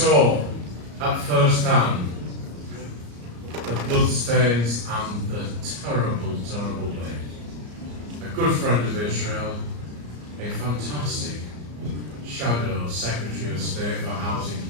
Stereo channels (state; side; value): late; left; 34 ms